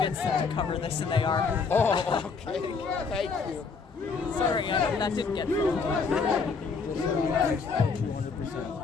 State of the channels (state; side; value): quieter; right; 5.0 dB